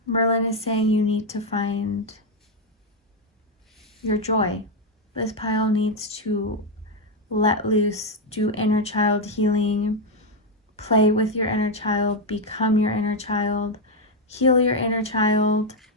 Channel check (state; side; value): normal; both; correlation 0.03